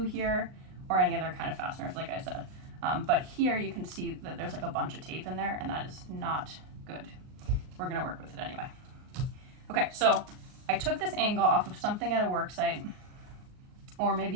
here or any other kind of fasteners, like I said. But here you can see that there's like a bunch of tape in there, and that is not good. We're gonna work with it anyway. Okay, so I took this angle off of something at a work site, or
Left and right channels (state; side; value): late; left; 38 ms